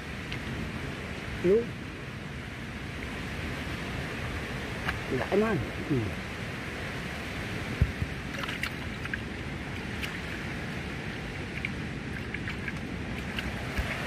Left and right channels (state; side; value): identical; both; correlation 1.00